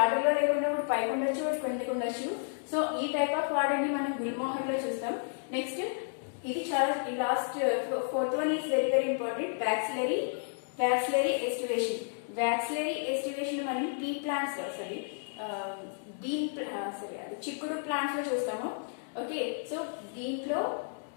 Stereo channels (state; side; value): silent; right; digital silence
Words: ఆర్డర్ లో లేకుండా ఒకటి పైకి ఉండొచ్చు, ఒకటి కిందకి ఉండొచ్చు. సో ఈ టైప్ ఆఫ్ ఆర్డర్ ని మనం గుల్మోహర్ లో చూస్తాం. నెక్స్ట్ ఇది చాలా last fourth one is very very important, vexillary aestivation. Vexillary aestivation మనం పీ ప్లాంట్స్ అది చిక్కుడు ప్లాంట్స్ లో చూస్తాము. ఓకే, సో దీంట్లో